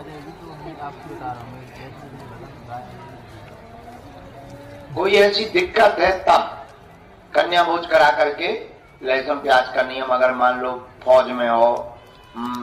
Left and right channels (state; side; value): identical; both; correlation 1.00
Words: कोई ऐसी दिक्कत है तब कन्या भोज करा करके लहसुन प्याज का नियम, अगर मान लो फौज में हो,